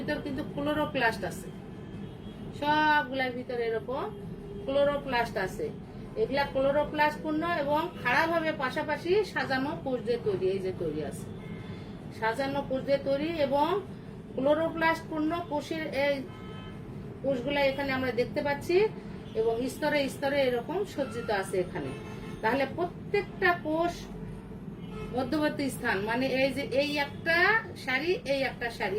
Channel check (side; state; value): both; identical; correlation 1.00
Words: কিন্তু ক্লোরোপ্লাস্ট আছে, সবগুলার ভিতরে এরকম ক্লোরোপ্লাস্ট আছে। এগুলা ক্লোরোপ্লাস্ট পূর্ণ এবং খাড়াভাবে পাশাপাশি সাজানো কোষ দিয়ে তৈরি। এই যে তৈরি আছে সাজানো কোষ দিয়ে তৈরি, এবং ক্লোরোপ্লাস্ট পূর্ণ কোষের এই কোষগুলা এখানে আমরা দেখতে পাচ্ছি, এবং স্তরে স্তরে এরকম সজ্জিত আছে এখানে। তাহলে প্রত্যেকটা কোষ মধ্যবর্তী স্থান, মানে এই যে এই একটা সারি, এই একটা সারি,